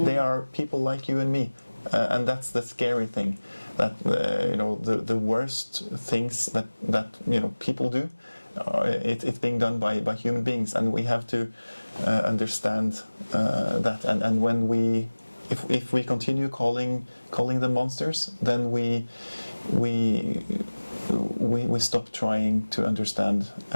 are people like you and me, and that's the scary thing. That the worst things that people do, it's being done by human beings, and we have to understand that. And when if we continue calling them monsters, then we stop trying to understand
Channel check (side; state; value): both; inverted; correlation -1.00